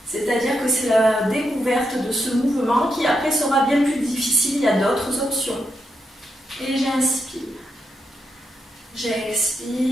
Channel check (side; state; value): both; normal; correlation 0.83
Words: C'est-à-dire que c'est la découverte de ce mouvement qui après sera bien plus difficile. Il y a d'autres options. Et j'inspire.